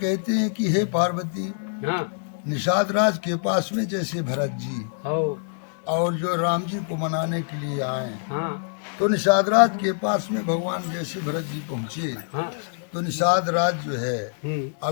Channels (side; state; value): right; silent; digital silence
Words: हैं कि हे पार्वती, निषाद राज के पास में जैसे भरत जी और जो राम जी को मनाने के लिए आए तो निषाद राज के पास में भगवान जैसे भरत जी पहुँचे तो निषाद राज जो है